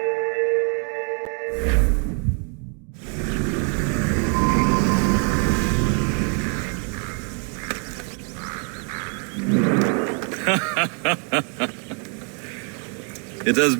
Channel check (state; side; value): quieter; left; 39.6 dB